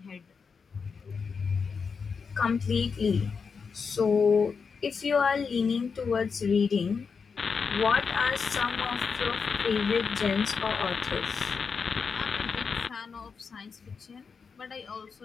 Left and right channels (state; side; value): quieter; right; 5.6 dB